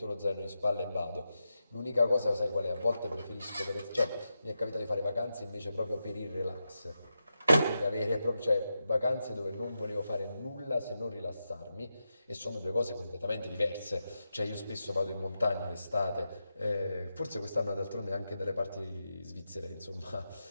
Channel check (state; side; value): inverted; both; correlation -0.88